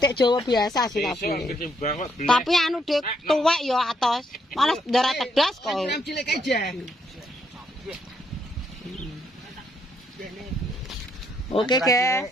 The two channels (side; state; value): both; normal; correlation 0.74